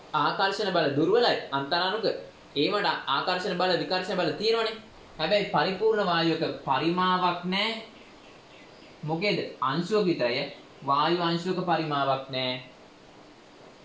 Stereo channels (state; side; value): identical; both; correlation 1.00